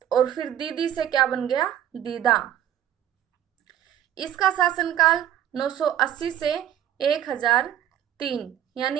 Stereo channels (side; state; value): left; quieter; 10.7 dB